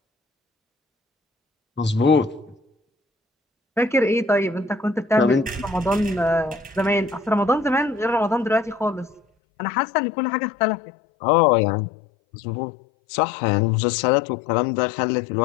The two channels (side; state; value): right; drops out; at 9.2 s